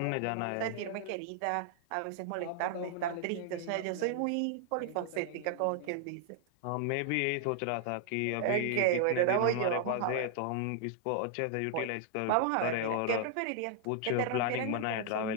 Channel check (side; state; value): both; different; correlation 0.00